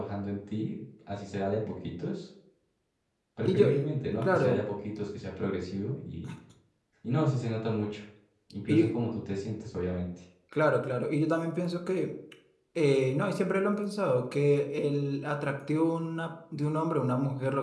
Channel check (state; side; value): identical; both; correlation 1.00